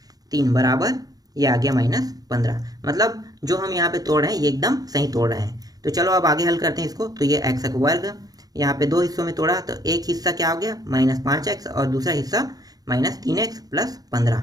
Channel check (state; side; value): late; left; 0.18 ms